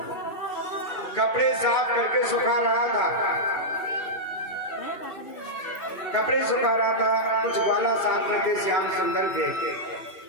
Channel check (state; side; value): late; right; 2.9 ms